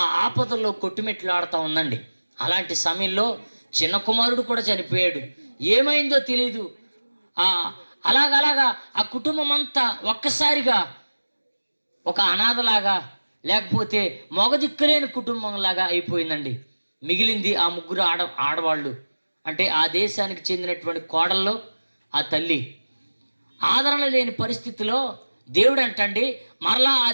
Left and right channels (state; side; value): inverted; both; correlation -1.00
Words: ఆపదల్లో కొట్టుమిట్లాడుతూ ఉందండి. అలాంటి సమయంలో చిన్న కుమారుడు కూడా చనిపోయాడు. ఏమైందో తెలీదు. అలాగలాగా ఆ కుటుంబం అంతా ఒక్కసారిగా ఒక అనాథలాగా, లేకపోతే మొగదిక్కులేని కుటుంబంలాగా అయిపోయిందండి. మిగిలింది ఆ ముగ్గురు ఆడవాళ్ళు. అంటే ఆ దేశానికి చెందినటువంటి కోడల్లో ఆ తల్లి. ఆదరణ లేని పరిస్థితిలో దేవుడు అంటండి మరలా ఆ